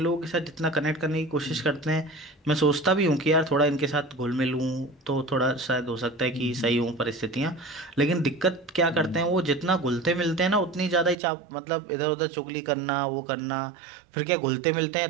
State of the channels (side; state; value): left; drops out; at 11.2 s